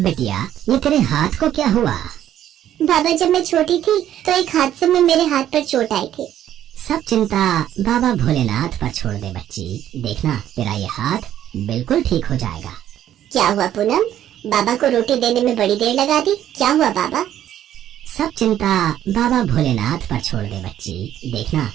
ये तेरे हाथ को क्या हुआ? बाबा जब मैं छोटी थी तो एक हादसे में मेरे हाथ पर चोट आई थी। सब चिंता बाबा भोलेनाथ पर छोड़ दे बच्ची, देखना तेरा ये हाथ बिल्कुल ठीक हो जाएगा। क्या हुआ पूनम, बाबा को रोटी देने में बड़ी देर लगा दी, क्या हुआ बाबा? सब चिंता बाबा भोलेनाथ पर छोड़ दे बच्ची, देखना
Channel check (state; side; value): quieter; left; 11.4 dB